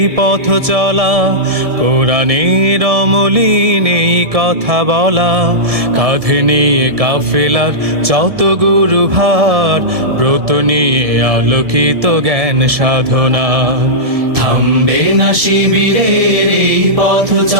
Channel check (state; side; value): late; left; 1.7 ms